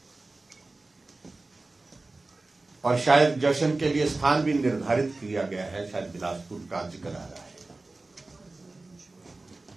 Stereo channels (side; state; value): left; quieter; 3.3 dB